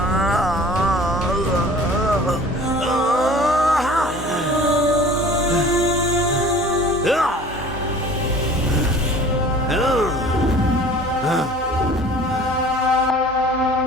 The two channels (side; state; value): both; normal; correlation 0.46